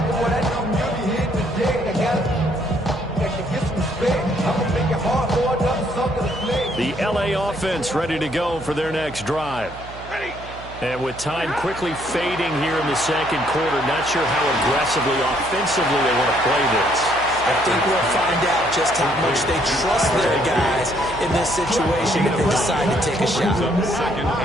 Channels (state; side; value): noise; right; hum, 15 dB below the sound